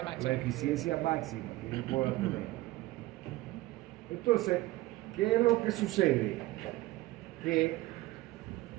la máxima. eficiencia máxima que yo puedo tener. Entonces, ¿qué es lo que sucede? Que,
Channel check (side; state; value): left; quieter; 18.5 dB